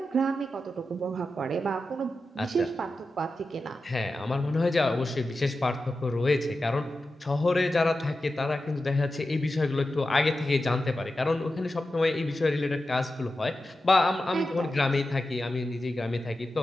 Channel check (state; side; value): normal; both; correlation 0.92